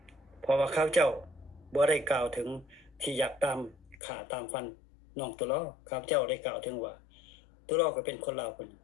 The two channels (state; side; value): drops out; right; at 4.0 s